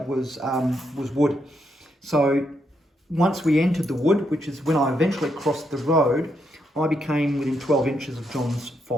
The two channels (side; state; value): both; normal; correlation 0.79